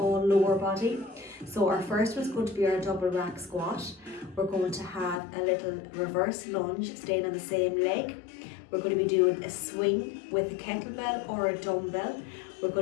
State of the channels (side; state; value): right; drops out; at 5.2 s